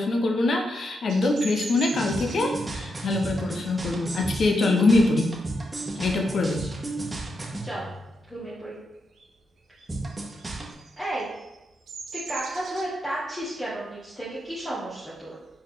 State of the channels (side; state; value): both; normal; correlation 0.84